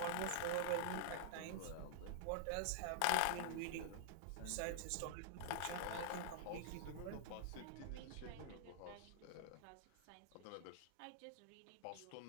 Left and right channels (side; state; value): both; different; correlation -0.01